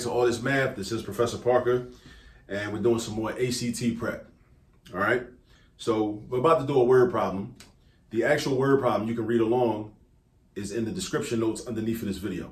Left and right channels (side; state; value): both; identical; correlation 1.00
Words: All This Math. This is Professor Parker, and we're doing some more ACT prep. All right. So we're about to do a word problem. The actual word problem you can read along is in the description notes underneath of this video